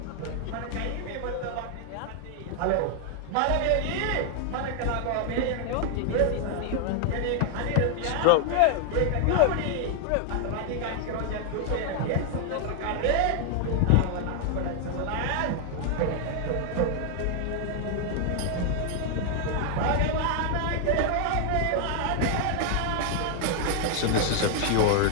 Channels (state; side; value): different; both; correlation 0.00